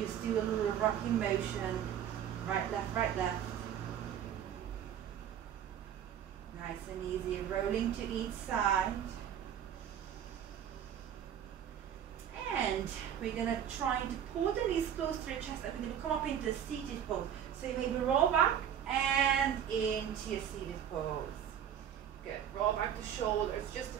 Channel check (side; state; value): left; quieter; 9.4 dB